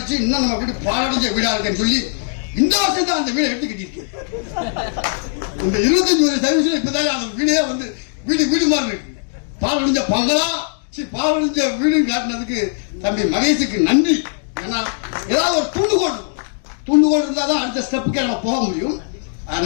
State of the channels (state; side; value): silent; right; digital silence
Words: இன்னும் நம்ம வீடு பாலடைஞ்ச வீடா இருக்குன்னு சொல்லி இந்த வருஷம் தான் அந்த வீடை எடுத்து கட்டிருக்கு. இந்த 25 வருஷம் சர்வீஸ்ல இப்பதான் அந்த வீடே வந்து வீடு மாதிரி இருக்கு. பாலடைஞ்ச பங்களா பாலடைஞ்ச வீடுன்னு காட்டினதுக்கு தம்பி மகேஷுக்கு நன்றி. ஏன்னா ஏதாவது ஒரு தூண்டுகோல் இருந்தா தான் அடுத்த ஸ்டெப்புக்கே நம்ம போக முடியும்.